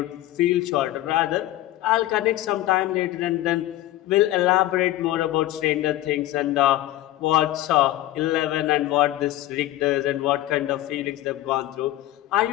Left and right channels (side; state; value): right; quieter; 15.2 dB